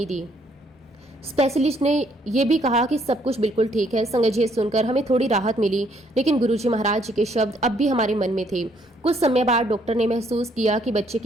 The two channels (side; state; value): both; normal; correlation 0.68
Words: दी। स्पेशलिस्ट ने यह भी कहा कि सब कुछ बिल्कुल ठीक है। संगत जी, सुनकर हमें थोड़ी राहत मिली। लेकिन गुरुजी महाराज जी के शब्द अब भी हमारे मन में थे। कुछ समय बाद डॉक्टर ने महसूस किया कि बच्चे